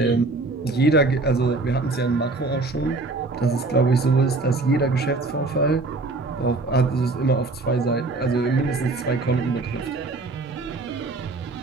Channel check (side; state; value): left; quieter; 3.4 dB